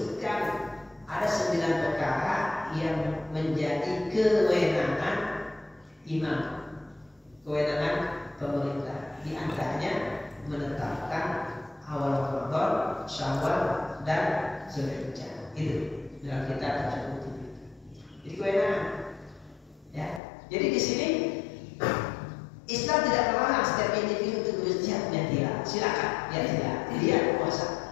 ada 9 perkara yang menjadi kewenangan imam, kewenangan pemerintah. Di antaranya menetapkan Syawal dan Zulhijjah. Itu dalam kitab tersebut. Jadi kewenangan. Ya. Jadi di sini Islam tidak melarang setiap individu untuk berjihad, ya tidak. Silakan, ya tidak. Dia puasa.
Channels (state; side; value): drops out; right; at 20.2 s